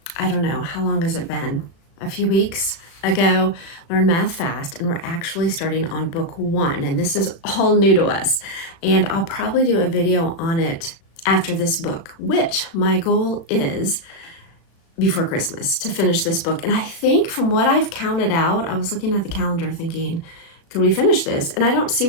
I don't know, how long has it been? A few weeks ago, Learn Math Fast, and we're actually starting on book 1, and this is all new to us, and I'll probably do a video on it after this book, which my goal is before Christmas to finish this book. And I think from what I've counted out, I was looking at the calendar thinking, could we finish this? And I don't see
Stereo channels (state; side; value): late; right; 36 ms